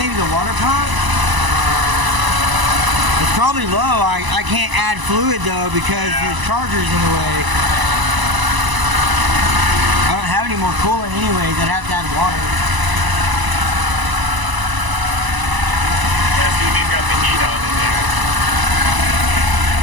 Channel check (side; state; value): left; late; 1.0 ms